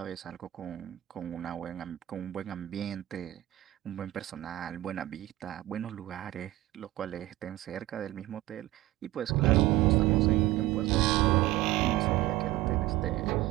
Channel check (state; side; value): quieter; left; 16.7 dB